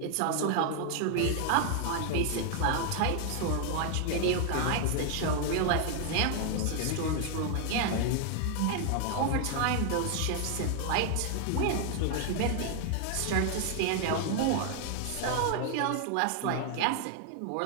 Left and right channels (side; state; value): both; different; correlation 0.00